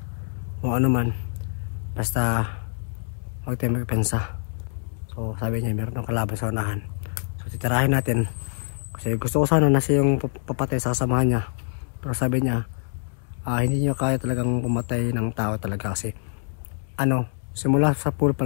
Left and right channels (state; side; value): silent; right; 61 dB below the other